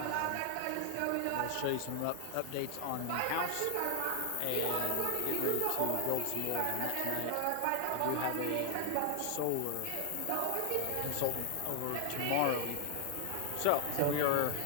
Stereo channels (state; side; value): different; both; correlation 0.00